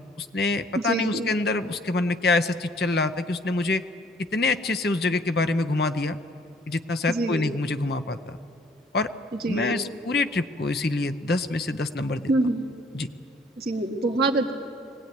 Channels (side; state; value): both; normal; correlation 0.59